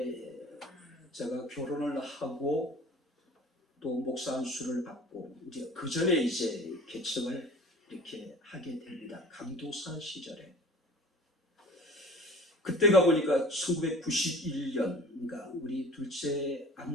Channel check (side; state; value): both; normal; correlation 0.43